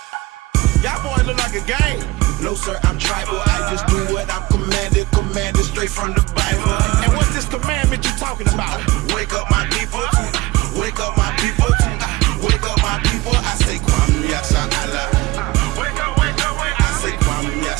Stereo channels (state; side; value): quieter; left; 19.6 dB